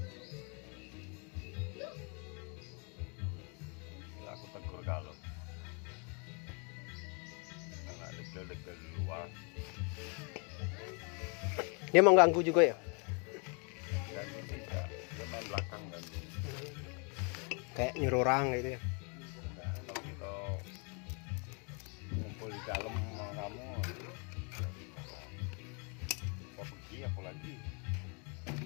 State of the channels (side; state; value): right; quieter; 35.5 dB